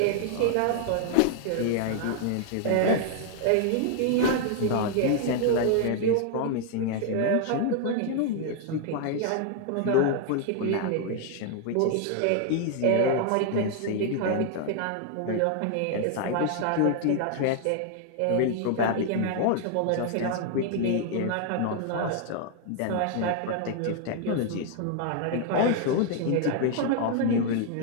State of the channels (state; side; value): different; both; correlation 0.00